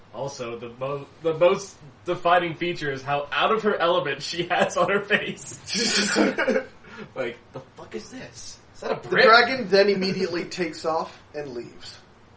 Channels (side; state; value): both; identical; correlation 1.00